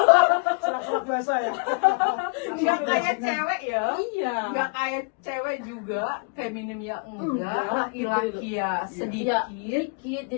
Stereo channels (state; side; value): quieter; right; 35.6 dB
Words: Serak biasa ya. nggak kayak cewek ya. Iya. Nggak kayak cewek juga, feminim ya enggak, Enggak, laki-laki ya Iya, sedikit. dikit.